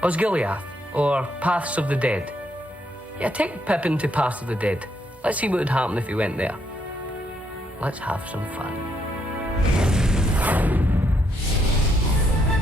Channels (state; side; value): normal; both; correlation 0.75